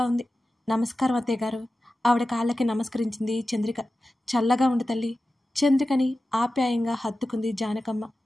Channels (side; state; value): both; normal; correlation 0.94